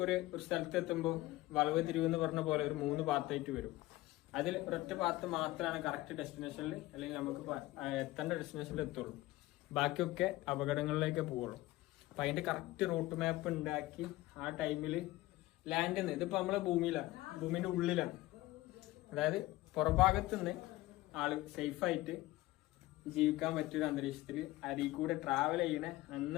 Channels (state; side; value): quieter; right; 18.1 dB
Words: ഒരു സ്ഥലത്ത് എത്തുമ്പോൾ വളവ് തിരിവെന്ന് പറഞ്ഞ പോലെ ഒരു 3 പാത്തായിട്ട് വരും. അതിൽ ഒരൊറ്റ പാത്ത് മാത്രമാണ് കറക്റ്റ് ഡെസ്റ്റിനേഷനിൽ അല്ലെങ്കിൽ നമുക്ക് എത്തേണ്ട ഡെസ്റ്റിനേഷനിൽ എത്തുള്ളൂ. ബാക്കിയൊക്കെ അപകടങ്ങളിലേക്ക് പോവുള്ളൂ. അപ്പൊ അതിന്റെ കറക്റ്റ് റൂട്ട് മാപ്പ് ഉണ്ടാക്കി ആ ടൈമിൽ ലാൻഡിൽ നിന്ന് ഇതിപ്പോ നമ്മളെ ഭൂമിയിലാണ്, ഭൂമിന്റെ ഉള്ളിലാണ്. അതായത് പുറഭാഗത്ത് നിന്ന് ആള് സേഫായിട്ട് ജീവിക്കാൻ പറ്റിയൊരു അന്തരീക്ഷത്തിൽ അരിയിൽ കൂടെ ട്രാവൽ ചെയ്യണ